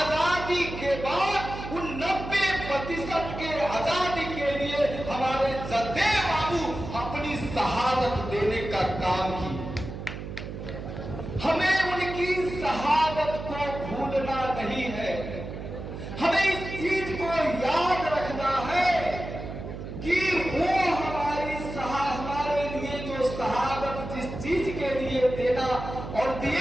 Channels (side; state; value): right; noise; hum, 9 dB below the sound